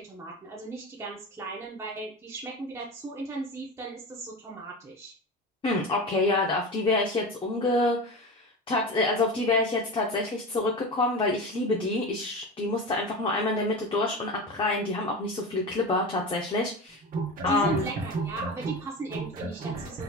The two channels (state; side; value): normal; both; correlation 0.27